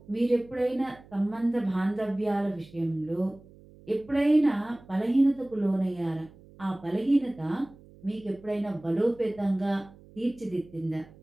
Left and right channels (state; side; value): noise; right; hum, 23 dB below the sound